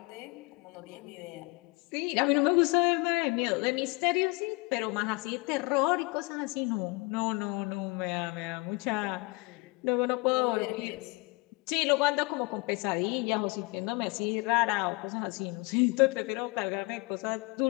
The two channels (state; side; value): quieter; right; 27.1 dB